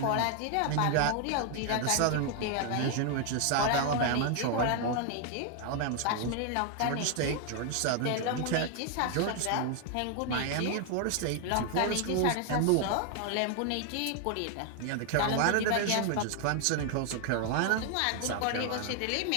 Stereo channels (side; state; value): both; different; correlation 0.00